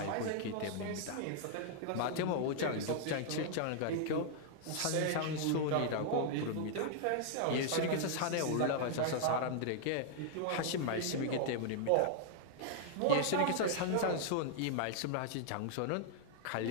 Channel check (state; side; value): different; both; correlation -0.01